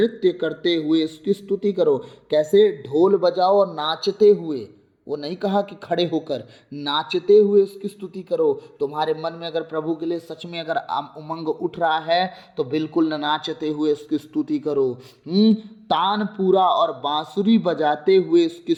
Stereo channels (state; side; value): identical; both; correlation 1.00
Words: करते हुए उसकी स्तुति करो। कैसे? ढोल बजाओ और नाचते हुए। वो नहीं कहा कि खड़े होकर, नाचते हुए उसकी स्तुति करो। तुम्हारे मन में अगर प्रभु के लिए सच में अगर उमंग उठ रहा है तो बिल्कुल नाचते हुए उसकी स्तुति करो। तानपुरा और बांसुरी बजाते हुए उसकी